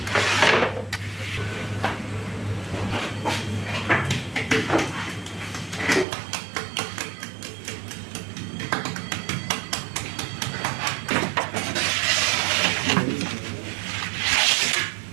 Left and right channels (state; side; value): drops out; left; at 6.1 s